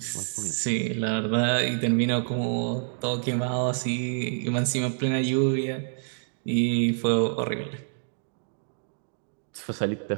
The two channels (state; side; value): silent; left; digital silence